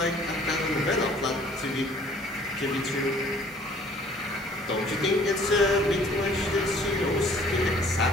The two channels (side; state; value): both; normal; correlation 0.55